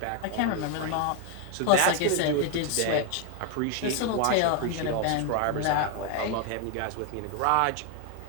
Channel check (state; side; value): different; both; correlation 0.01